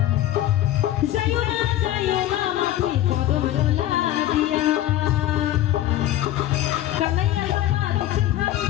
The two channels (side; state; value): right; quieter; 13.6 dB